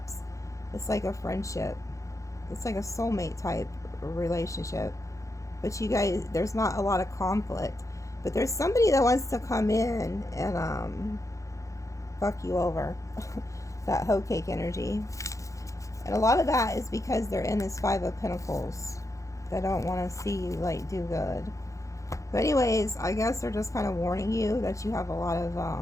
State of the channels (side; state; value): right; late; 0.15 ms